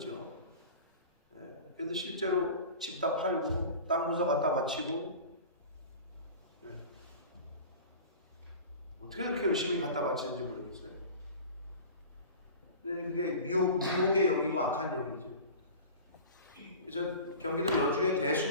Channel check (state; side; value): inverted; both; correlation -0.38